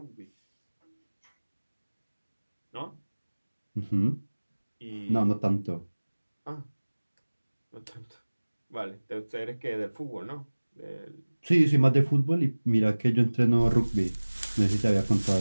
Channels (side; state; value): both; inverted; correlation -1.00